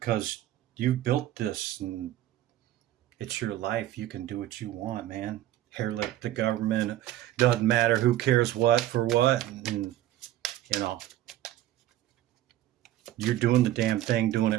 because you built this and it's your life. You can do what you want, man. hair-lip the government. Doesn't matter who cares what for what. And, you know, you're doing the damn thing, doing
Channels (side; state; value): left; quieter; 13.8 dB